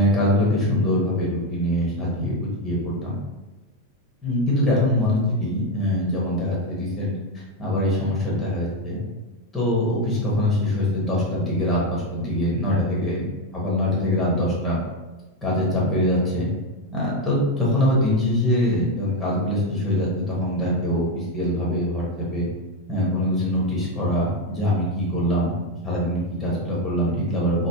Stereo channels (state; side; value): normal; both; correlation 0.09